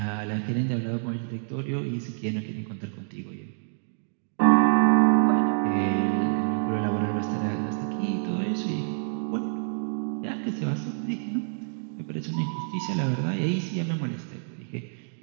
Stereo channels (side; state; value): left; silent; digital silence